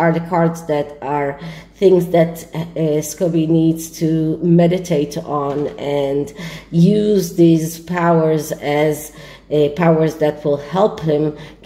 the cards that are things that Scobie needs to meditate on and use these powers as powers that will help him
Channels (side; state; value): both; identical; correlation 1.00